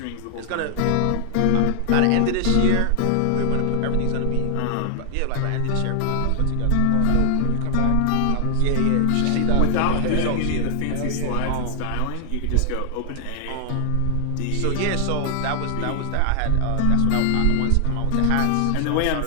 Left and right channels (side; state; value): both; different; correlation 0.00